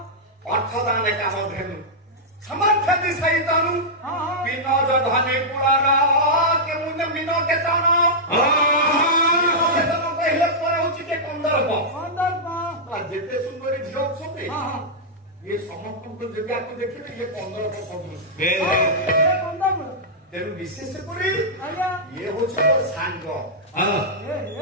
ଅର୍ଥଦାନେ କାମ ଧେନୁ ସମର୍ଥତି ସହିତନୁ ବିନ ଧନେ କୁଳାର କେଉଁ ବିନ କେତନ କହିଲେ ପରେ ହଉଛି କେ କନ୍ଦର୍ପ ଯେତେ ସୁନ୍ଦରୀ ଝିଅ ଅଛନ୍ତି ଇଏ ସମସ୍ତଙ୍କୁ ଯଦି ଆକୁ ଦେଖିବେ ଇଏ କନ୍ଦର୍ପ ସଦୃଶ ତେଣୁ ବିଶେଷ କରି ଇଏ ହଉଛି ମୋର ସାଙ୍ଗ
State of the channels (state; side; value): normal; both; correlation -0.09